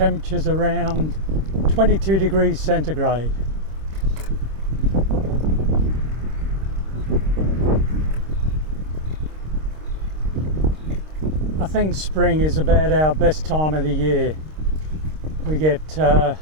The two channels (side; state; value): left; late; 26 ms